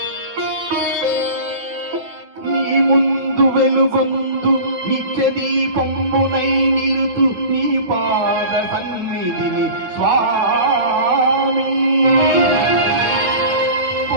నీ ముందు వెలుగొందు నిత్య దీపంబునై నిలుతు నీ పాద సన్నిధిని స్వామి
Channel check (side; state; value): left; late; 9.1 ms